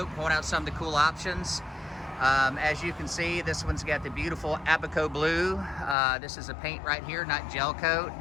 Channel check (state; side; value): drops out; right; at 6.0 s